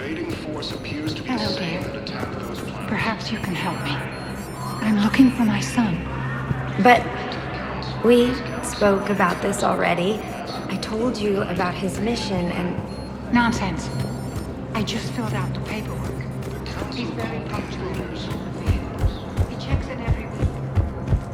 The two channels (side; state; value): both; identical; correlation 1.00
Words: force appears to be the same that attacked those planets. Perhaps you can help me. I'm looking for my son. But we spoke about this already. I told you about his mission and... Nonsense. I just filled out the paperwork. He's very punctual. He checks in every week.